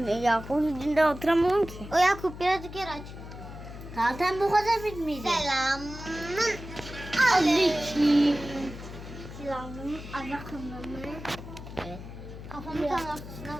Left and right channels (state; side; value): noise; left; hum, 12 dB below the sound